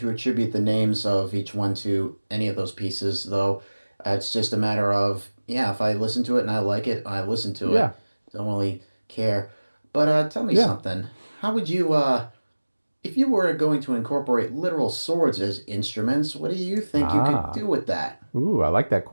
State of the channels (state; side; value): inverted; both; correlation -1.00